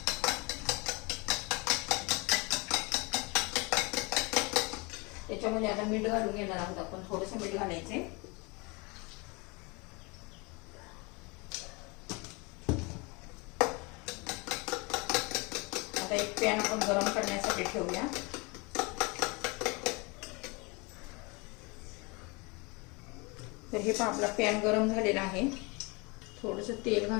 त्याच्यामध्ये आता मीठ घालून घेणार आहोत आपण. थोडंसं मीठ घालायचे. आता एक पॅन आपण गरम करण्यासाठी ठेवूया. तर हे पहा, आपला पॅन गरम झालेला आहे. थोडंसं तेल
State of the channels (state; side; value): quieter; right; 28.3 dB